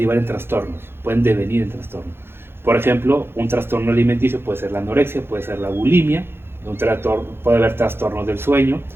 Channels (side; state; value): left; late; 0.11 ms